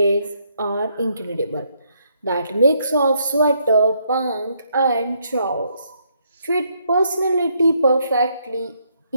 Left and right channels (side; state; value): both; inverted; correlation -0.73